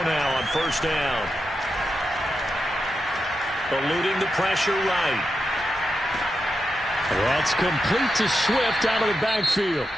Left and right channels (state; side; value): normal; both; correlation 0.87